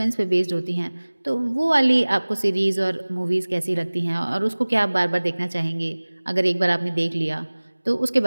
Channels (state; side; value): inverted; both; correlation -1.00